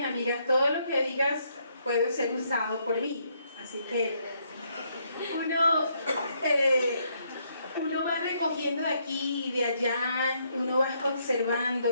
amigas, todo lo que digas puede ser usado por mí, así que uno va recogiendo de aquí y de allá, uno va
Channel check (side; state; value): both; inverted; correlation -0.73